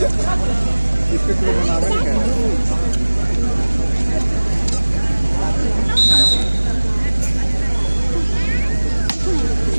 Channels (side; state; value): both; inverted; correlation -1.00